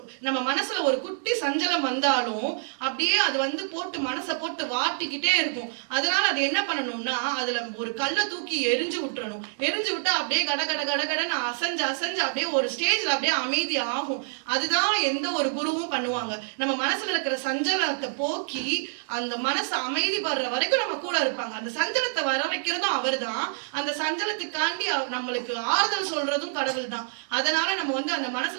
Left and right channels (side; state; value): left; silent; digital silence